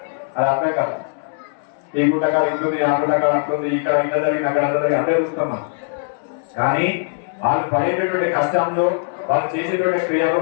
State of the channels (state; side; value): silent; right; 66 dB below the other